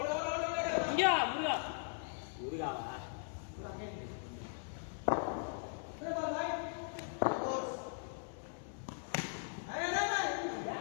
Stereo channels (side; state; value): right; silent; 52 dB below the other